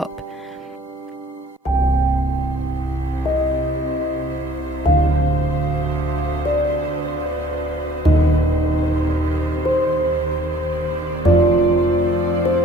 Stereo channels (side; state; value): both; normal; correlation 0.54